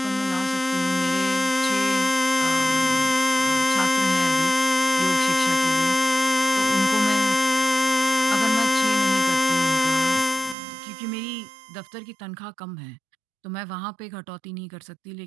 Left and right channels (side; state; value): left; drops out; at 10.6 s